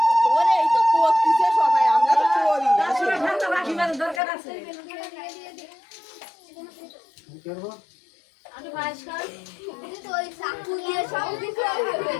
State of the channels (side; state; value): right; drops out; at 4.2 s